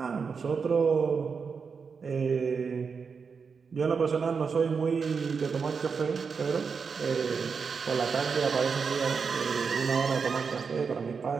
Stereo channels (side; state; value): left; quieter; 5.6 dB